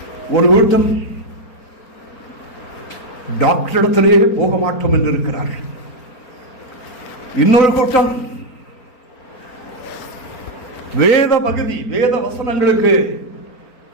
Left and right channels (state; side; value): late; right; 4.4 ms